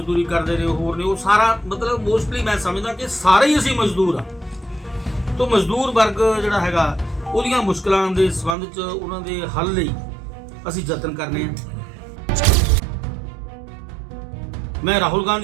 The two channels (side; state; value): left; drops out; at 8.6 s